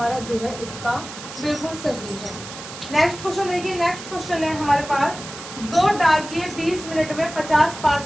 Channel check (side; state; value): right; noise; hiss, 12 dB below the sound